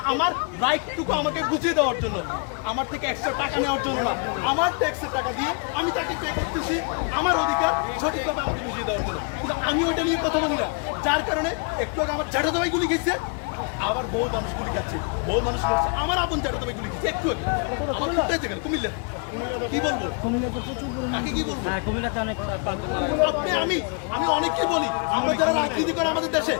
আমার রাইটটুকু আমাকে বুঝিয়ে দেওয়ার জন্য, আমার থেকে এক্সট্রা টাকা নেওয়ার জন্য না। আমার ট্যাক্সের টাকা দিয়ে আমি তাকে পে করতেছি আমার অধিকার সঠিকভাবে আমাকে বুঝিয়ে দেওয়ার জন্য। কিন্তু আমি ওইটা নিয়ে কথা বলি না, যার কারণে একটু আগে আমার জ্যাঠা দাবাই গুলি খেয়েছে, আবার বহু মানুষ গুলি খাচ্ছে, বহু মানুষ করছে। আমার আপন জ্যাঠা দাবাই গুলি খেয়েছে একটু আগে, আমার কুমিল্লাতে গেল। কুমিল্লা কি বলবো, কুমিল্লাতে প্রচুর পরিমাণে কি বলবো, কুমিল্লাতে অনেক আমি অনেককে বলি, আমরা যারা রাজনীতি করে আমাদের দেশে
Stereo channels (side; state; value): right; quieter; 37.6 dB